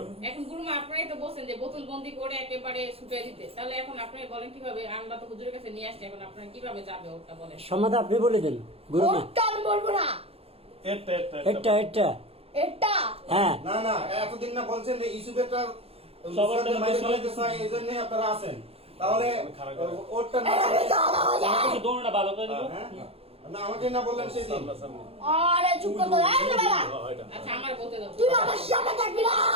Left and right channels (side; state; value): left; late; 0.28 ms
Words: এখন গুরুমা আপনারাই তো বলছেন যে বোতল বন্দি করে একেবারে ছুটিয়ে দিতে তাহলে এখন আপনারা বলেন কিভাবে আমরা তো হুজুরের কাছে নিয়ে আসছি এখন আপনারা কিভাবে যাবে ওটা বলেন সমাধান আপনি বলে দেন গুরুমা ওটা আমি বলবো না এটা এটা এটা এটা হ্যাঁ না না এতদিন না বলছেন যে ইসুবেটার সবার সবার টাকা বাইরে দিয়ে চলে গেছে এই জন্য আপনারা আছেন তাহলে খারাপ করে। ওরটা না আমাকে দোনোটা ভালো করে দিব হ্যাঁ? না আমাকে না বললেন সেদিন সামনাসামনি। আরে চুপ করতে দাও এই বেলা এটা। আচ্ছা আমার বলতে দাও তুই আমার সামনে থাকবি না